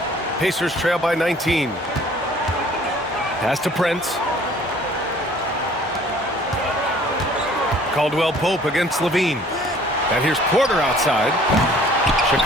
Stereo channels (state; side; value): normal; both; correlation 0.54